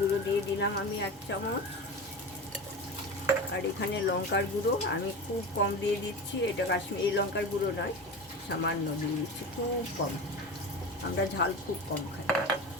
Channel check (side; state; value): both; normal; correlation 0.28